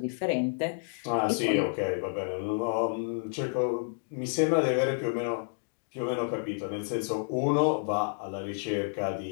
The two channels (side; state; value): right; silent; digital silence